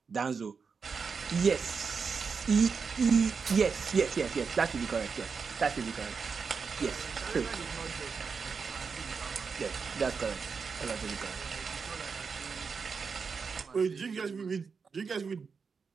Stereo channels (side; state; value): left; quieter; 5.5 dB